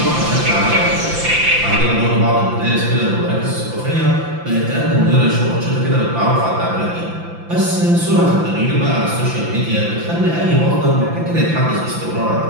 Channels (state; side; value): late; left; 5.9 ms